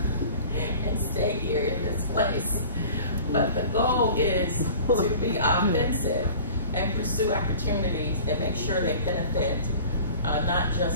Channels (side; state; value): both; inverted; correlation -0.44